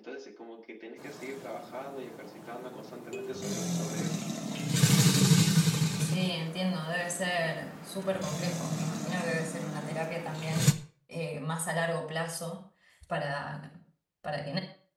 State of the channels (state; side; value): identical; both; correlation 1.00